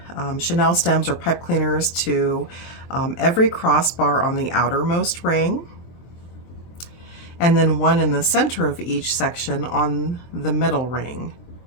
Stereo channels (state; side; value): late; right; 23 ms